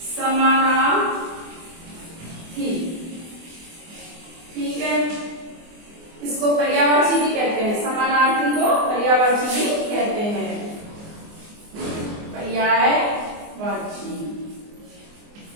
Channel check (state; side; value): late; left; 24 ms